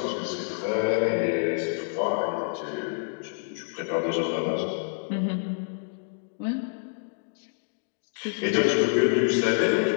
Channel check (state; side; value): silent; right; digital silence